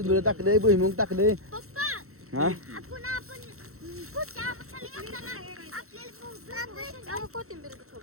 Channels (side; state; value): left; late; 0.63 ms